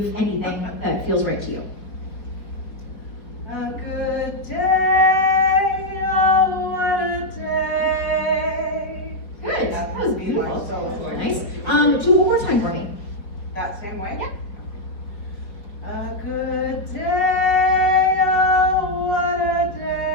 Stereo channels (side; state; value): right; late; 4.9 ms